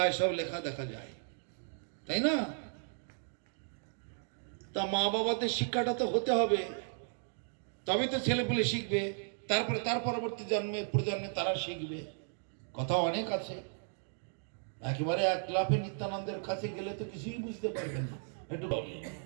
সব লেখা দেখা যায়, তাই না? তা মা বাবাদের শিক্ষাটা তো হতে হবে, তবে তো ছেলেপুলে শিখবে, তারপরে তার পরবর্তী প্রজন্মে তারা শিখবে। কথা অনেক আছে। একেবারে এক লাফে নিত্যানন্দের কাছে গেলে তো কিছুই বুঝতে পারবেন না। একটু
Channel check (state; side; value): silent; left; digital silence